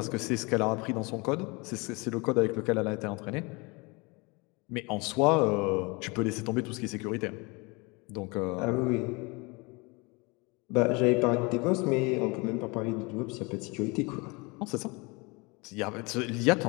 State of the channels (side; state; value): right; quieter; 27.4 dB